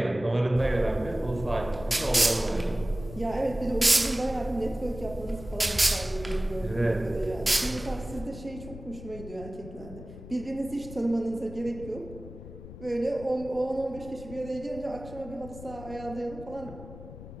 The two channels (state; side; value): noise; left; rumble, 13 dB below the sound